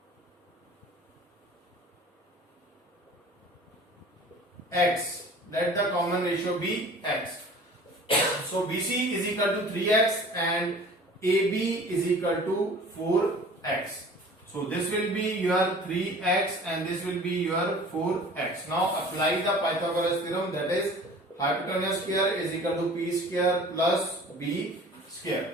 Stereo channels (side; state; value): both; normal; correlation 0.45